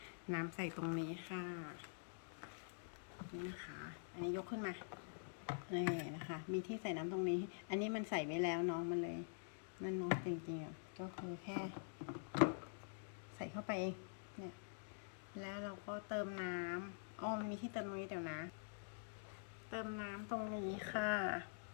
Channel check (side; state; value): right; silent; digital silence